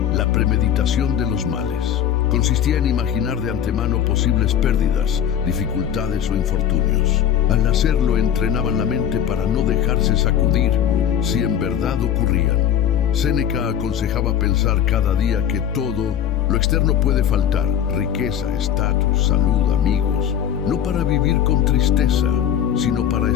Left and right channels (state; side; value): quieter; right; 9.6 dB